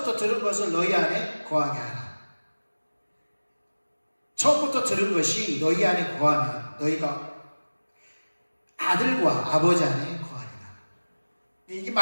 들은 것을 너희 안에 거하게 하라. 처음부터 들은 것이 너희 안에 거하면 너희가 아들과 아버지 안에 거하리라. 이게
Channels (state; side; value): inverted; both; correlation -1.00